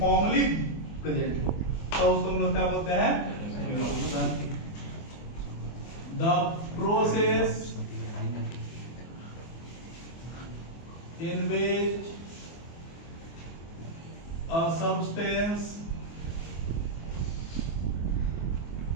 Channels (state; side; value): late; right; 24 ms